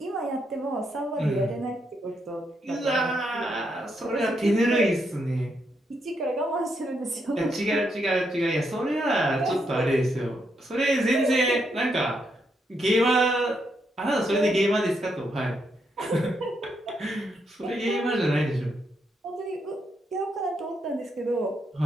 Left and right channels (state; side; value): normal; both; correlation 0.79